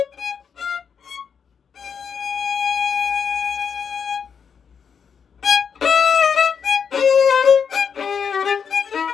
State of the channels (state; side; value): quieter; right; 6.7 dB